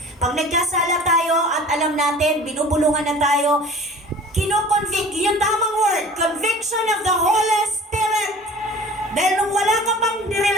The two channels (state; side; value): normal; both; correlation 0.44